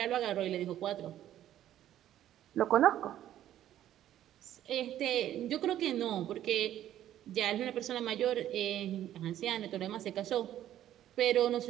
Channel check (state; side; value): quieter; left; 12.0 dB